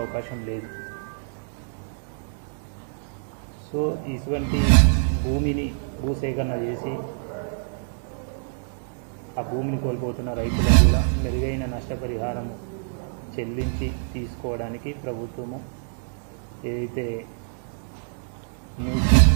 లేదు. సో ఇటువంటి భూమిని భూసేకరణ చేసి ఆ భూమిని కోల్పోతున్న రైతులకు కూడా మెరుగైన నష్టపరిహారం చెల్లించి తీసుకోవడానికి ప్రభుత్వము ఏదైతే మూసి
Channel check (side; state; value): left; silent; digital silence